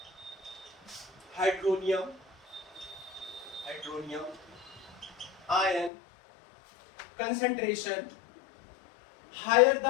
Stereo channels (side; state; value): right; drops out; at 5.9 s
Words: hydronium ion concentration higher